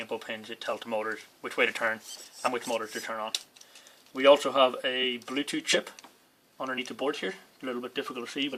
input pins, it tells the motors which way to turn and which motors to turn on. We also have a Bluetooth chip underneath the board here. A little bit difficult to see,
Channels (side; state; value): both; identical; correlation 1.00